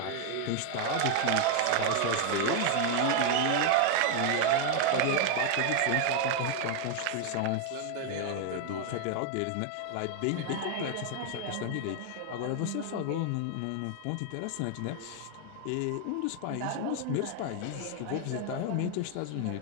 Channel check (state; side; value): different; both; correlation 0.00